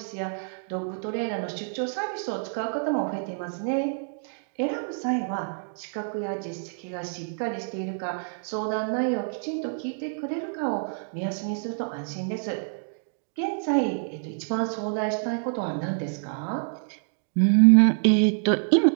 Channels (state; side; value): silent; left; digital silence